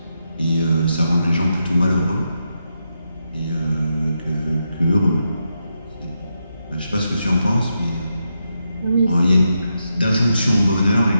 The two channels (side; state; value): both; inverted; correlation -0.84